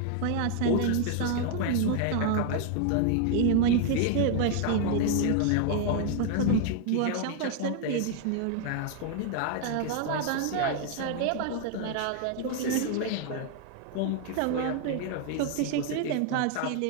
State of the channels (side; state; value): both; different; correlation 0.00